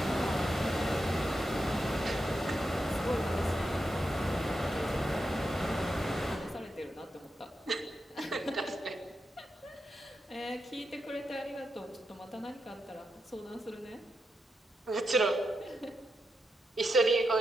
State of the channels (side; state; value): both; normal; correlation 0.86